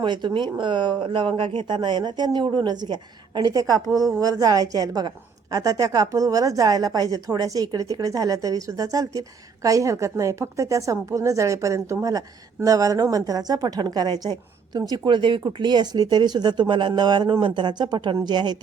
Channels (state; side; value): quieter; left; 5.8 dB